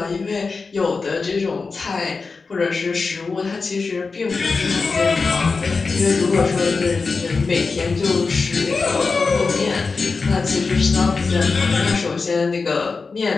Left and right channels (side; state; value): right; quieter; 4.4 dB